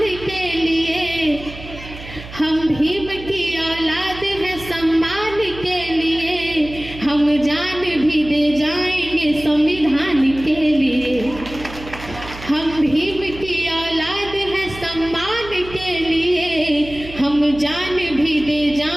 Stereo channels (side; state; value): right; noise; hum, 14 dB below the sound